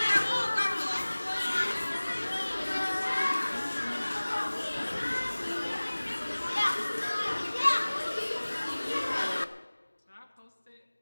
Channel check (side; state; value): both; inverted; correlation -1.00